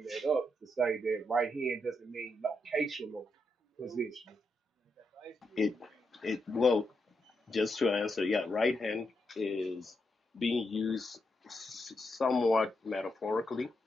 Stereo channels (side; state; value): both; normal; correlation 0.82